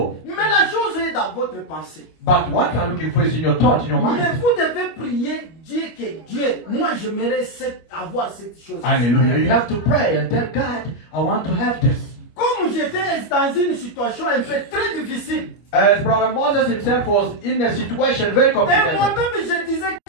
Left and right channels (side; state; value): right; late; 25 ms